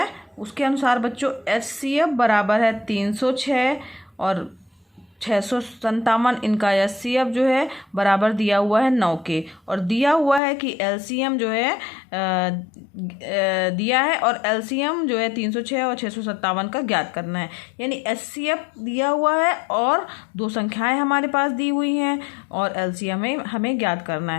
उसके अनुसार बच्चों HCF बराबर है 306 और 657। इनका HCF जो है बराबर दिया हुआ है 9 के, और दिया हुआ है कि LCM जो है दिया है, और LCM जो है 306 और 657 का ज्ञात करना है। यानी HCF दिया हुआ है और दो संख्याएं हमारे पास दी हुई हैं, और LCM हमें ज्ञात करना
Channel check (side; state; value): right; drops out; at 10.4 s